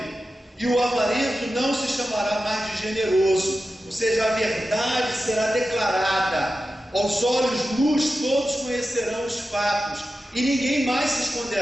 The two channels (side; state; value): both; normal; correlation 0.92